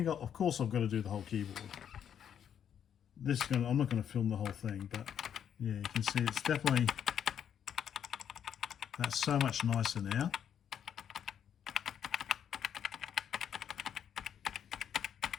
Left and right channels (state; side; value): quieter; right; 8.9 dB